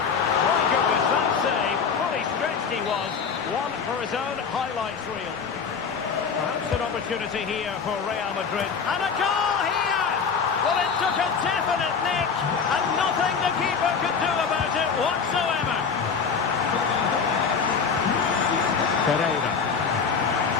goodness, that save. Fully stretched he was. One for his own highlights reel. Perhaps an opportunity here for Real Madrid. And a goal here! Well, it took a definite nick, and nothing the keeper could do about it whatsoever. Pereira.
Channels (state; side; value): quieter; right; 5.9 dB